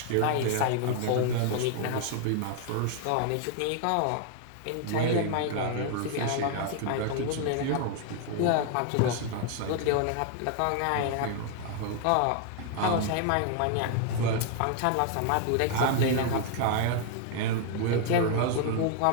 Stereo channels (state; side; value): different; both; correlation 0.00